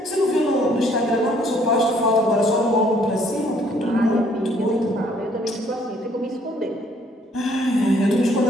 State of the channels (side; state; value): both; normal; correlation 0.63